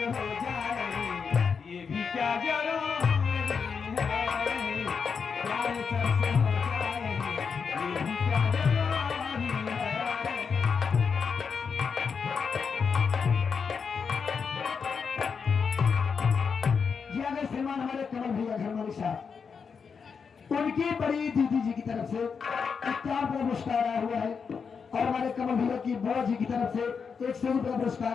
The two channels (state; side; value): quieter; right; 5.9 dB